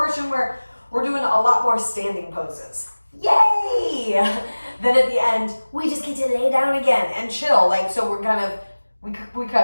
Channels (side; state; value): both; inverted; correlation -1.00